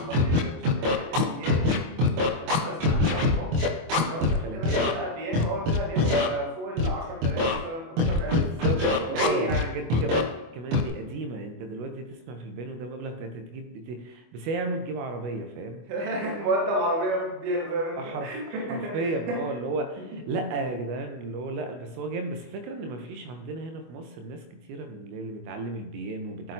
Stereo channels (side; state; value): left; late; 25 ms